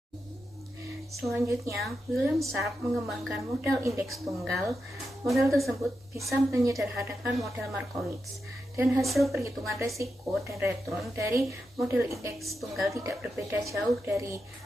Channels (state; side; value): normal; both; correlation 0.87